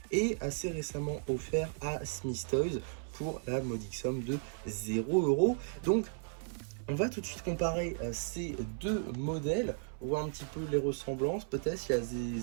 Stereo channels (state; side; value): silent; left; 54 dB below the other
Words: et assez récemment offert à Smith Toys pour la modique somme de 0 €. Donc on va tout de suite comparer ces deux modèles, voir un petit peu les ressemblances, peut-être s'il y a